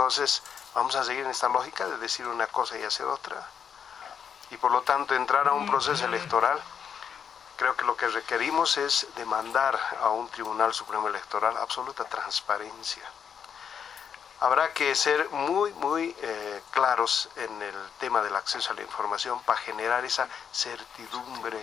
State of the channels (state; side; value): quieter; right; 7.5 dB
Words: vamos a seguir en esta lógica de decir una cosa y hacer otra. Y por lo tanto entrar a un proceso electoral, creo que lo que requerimos es demandar a un Tribunal Supremo Electoral absoluta transparencia. Habrá que ser muy claros en el tema del acceso a la información para generar esa certidumbre